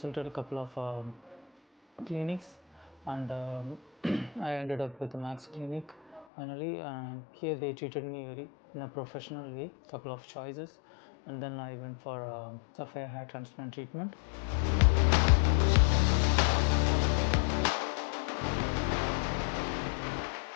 a couple of clinics, and I ended up with the Max Clinic finally. Here they treated me very in a professional way, couple of choices, and then I went for Sapphire hair transplant treatment.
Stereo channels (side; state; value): right; drops out; at 6.2 s